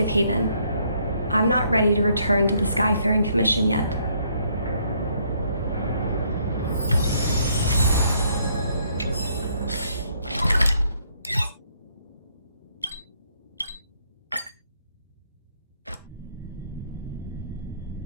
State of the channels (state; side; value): inverted; both; correlation -0.68